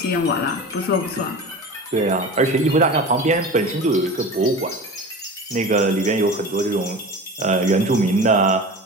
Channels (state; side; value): normal; both; correlation 0.33